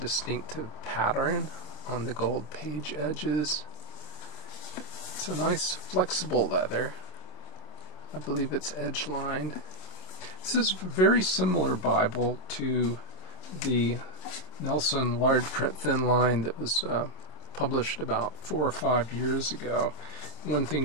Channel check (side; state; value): right; late; 27 ms